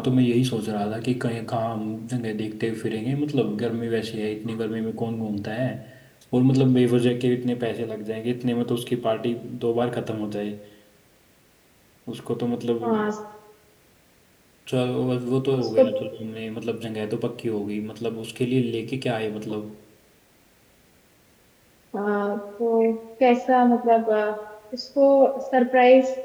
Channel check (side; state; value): both; identical; correlation 1.00